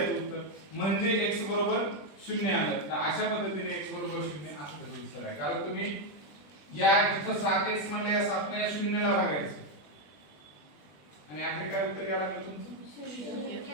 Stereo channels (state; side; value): late; right; 20 ms